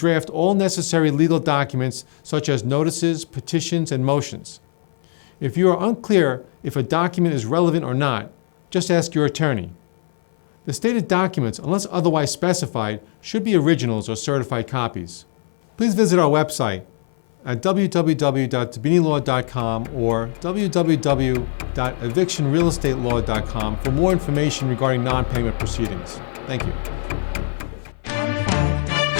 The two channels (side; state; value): right; silent; 55 dB below the other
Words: all necessary legal documents such as notices, petitions, and motions. If you are unclear if a document is relevant or not, just ask your attorney. The stated documents, unless otherwise specified, should be originals or certified copies. Please visit our website at www.dibbinilaw.com or www.evictionrealestatelaw.com for more information regarding non-payment proceedings. Thank you.